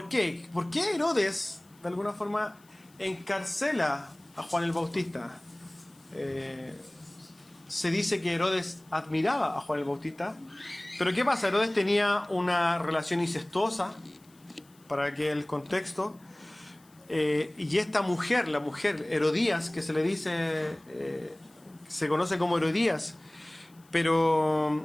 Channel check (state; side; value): noise; left; hiss, 30 dB below the sound